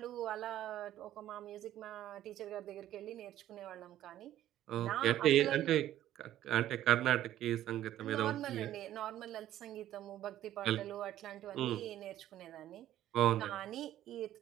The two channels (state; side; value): quieter; left; 12.8 dB